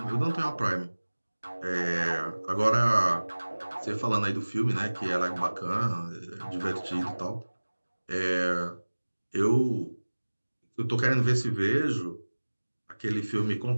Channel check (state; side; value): inverted; both; correlation -1.00